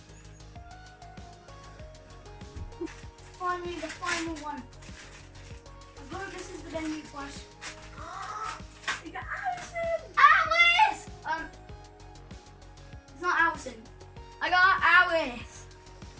Finally, the final one. I hope this is the venue flash. You got Allison! Alice! It's not Allison. I got Alice.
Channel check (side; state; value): both; identical; correlation 1.00